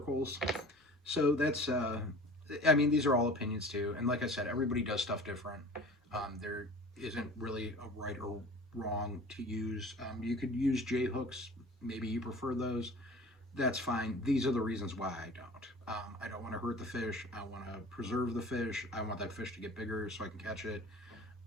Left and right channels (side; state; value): both; normal; correlation 0.42